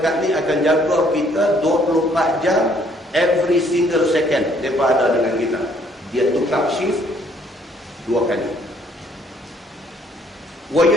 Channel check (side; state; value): both; normal; correlation 0.64